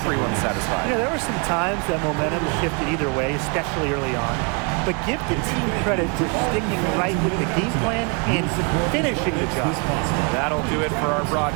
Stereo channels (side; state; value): left; quieter; 33.1 dB